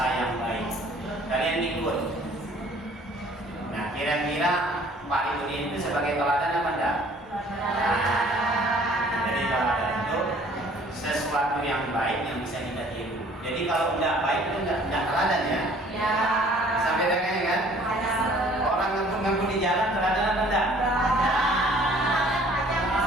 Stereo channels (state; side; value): normal; both; correlation 0.55